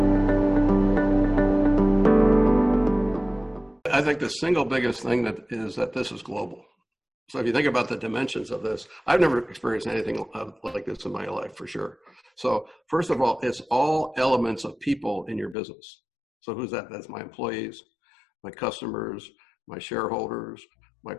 I think the single biggest thing is that this is global. So if you think about the dimensions of this, I've never experienced anything like this in my life, for sure. So first of all, it's all elements of people in your business. So who's that? That's my employees, my customers, my shareholders, my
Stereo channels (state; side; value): drops out; right; at 15.6 s